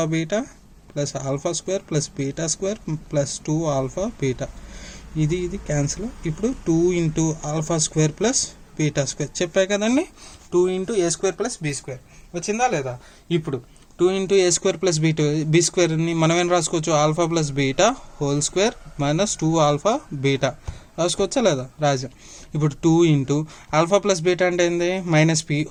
beta plus alpha square plus beta square plus 2 alpha beta. ఇది క్యాన్సిల్. ఇప్పుడు 2 into alpha square plus beta square చెప్పాయి కదండి. 2 into a² + b² వచ్చిందా లేదా. ఇప్పుడు 2 ఇంటూ a² + b²ని మనం ఏం రాసుకోవచ్చు, alpha + beta whole square -2 alpha beta రాసుకోవచ్చా లేదా? రాజా. ఇప్పుడు 2 ఇంటూ ఆల్ఫా ప్లస్ బీటా అంటే ఏంది? -p²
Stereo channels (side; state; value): both; identical; correlation 1.00